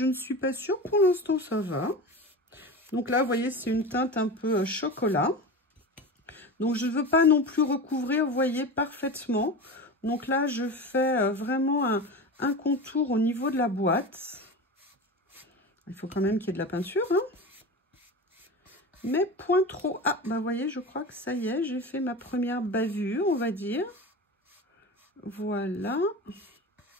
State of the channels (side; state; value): both; normal; correlation 0.28